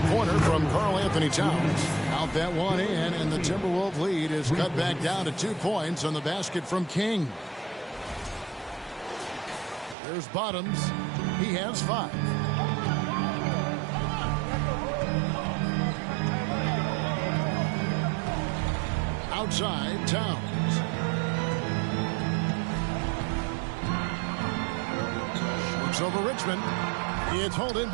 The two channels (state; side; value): drops out; left; at 10.0 s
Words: from Karl Anthony Towns. Out that one in, and the Timberwolves lead is cut back down to 2 points on the basket from King. There's Bottoms. He has 5. Outside, Towns. Shoots over Richmond. It's hauled in